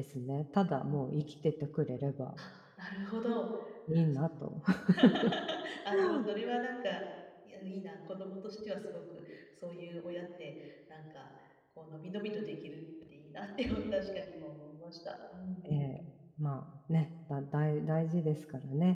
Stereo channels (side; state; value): both; identical; correlation 1.00